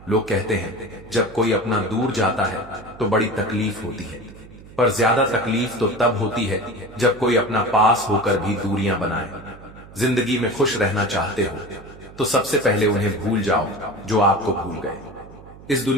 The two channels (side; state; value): right; noise; hum, 19 dB below the sound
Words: लोग कहते हैं जब कोई अपना दूर जाता है तो बड़ी तकलीफ होती है, पर ज्यादा तकलीफ तो तब होती है जब कोई अपना पास होकर भी दूरियां बनाए। जिंदगी में खुश रहना चाहते हो तो सबसे पहले उन्हें भूल जाओ जो आपको भूल गए। इस